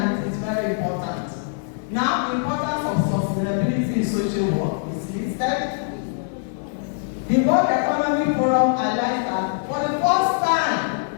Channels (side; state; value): right; silent; digital silence